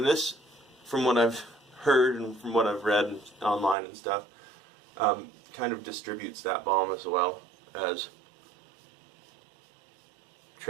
this, from what I've heard and from what I've read online and stuff, kind of distributes that balm as well as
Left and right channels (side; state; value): left; drops out; at 3.8 s